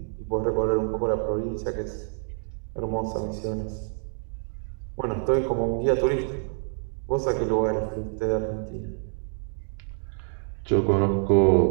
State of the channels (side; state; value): left; silent; 60 dB below the other